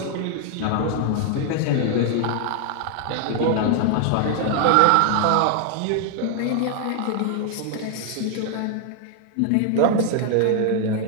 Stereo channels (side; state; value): both; different; correlation 0.00